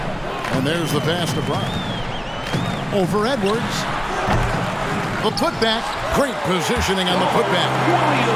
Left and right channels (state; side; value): identical; both; correlation 1.00